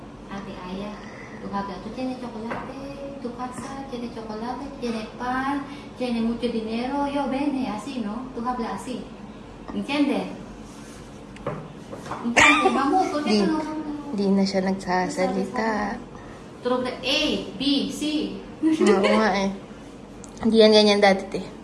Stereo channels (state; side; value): identical; both; correlation 1.00